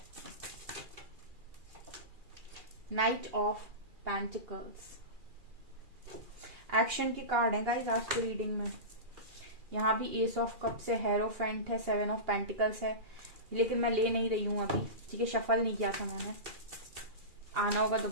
नाइट ऑफ पेंटिकल्स, एक्शन के कार्ड है गाइस आज की रीडिंग में। यहाँ भी एस ऑफ कप्स है, हेरोफेंट है, 7 ऑफ पेंटिकल्स है, लेकिन मैं ले नहीं रही हूं अभी, ठीक है, शफल नहीं किया था मैंने, आना होगा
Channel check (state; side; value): late; left; 2.4 ms